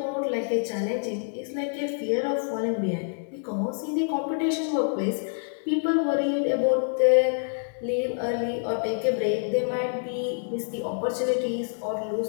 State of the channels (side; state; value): right; silent; 60 dB below the other